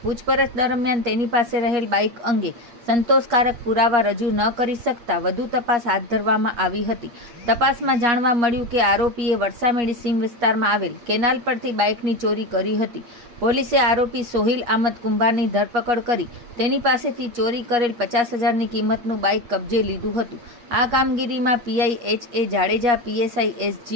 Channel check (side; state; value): left; late; 8.4 ms